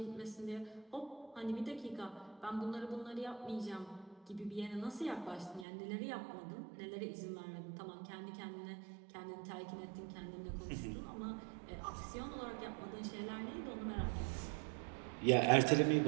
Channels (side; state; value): left; drops out; at 5.7 s